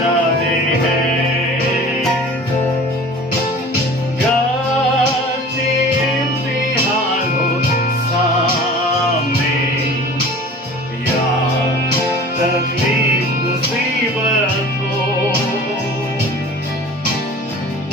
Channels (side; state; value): both; normal; correlation 0.42